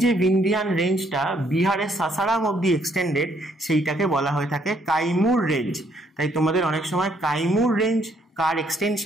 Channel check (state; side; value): normal; both; correlation 0.69